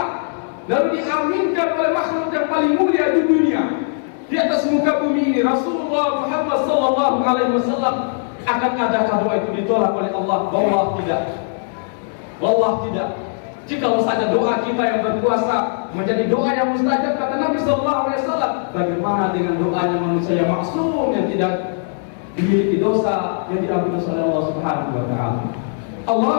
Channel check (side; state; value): right; silent; digital silence